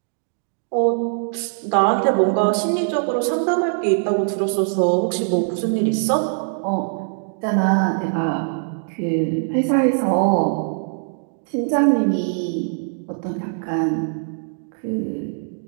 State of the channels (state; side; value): silent; left; digital silence